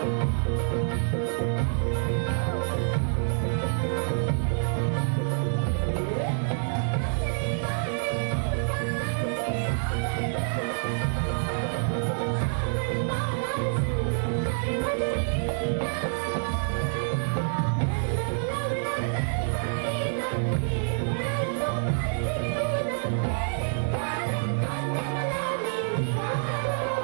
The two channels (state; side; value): silent; left; digital silence